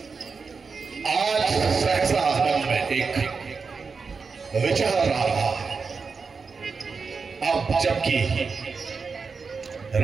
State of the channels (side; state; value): left; quieter; 5.0 dB